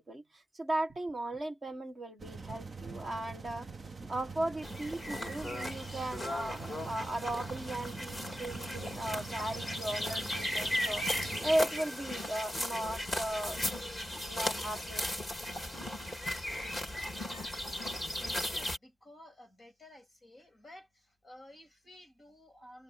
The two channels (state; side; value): normal; both; correlation 0.91